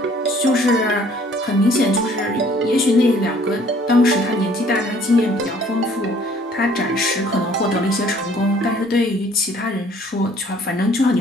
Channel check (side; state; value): both; normal; correlation 0.57